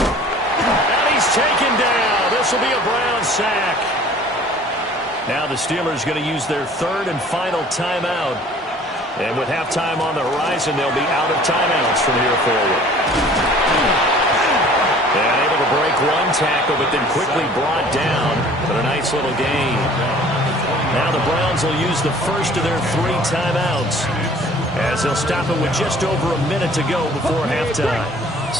he's taken down. This will be a Brown sack. Now the Steelers going to use their third and final timeout. And with halftime on the horizon, they'll be out of timeouts from here forward. And able to break one tackle, but then quickly brought down. But a nice little gain. Now the Browns will use the first of their three timeouts, as they'll stop it with just over a minute to go before halftime.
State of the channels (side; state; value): both; normal; correlation 0.50